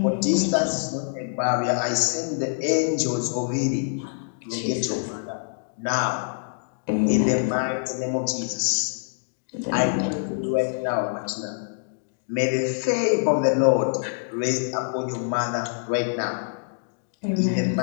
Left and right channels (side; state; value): right; silent; digital silence